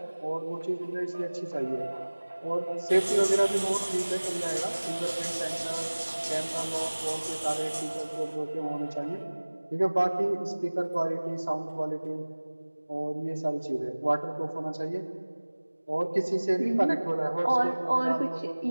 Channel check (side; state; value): both; inverted; correlation -1.00